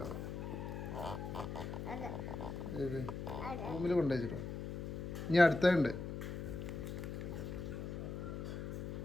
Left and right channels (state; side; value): noise; left; hum, 5 dB below the sound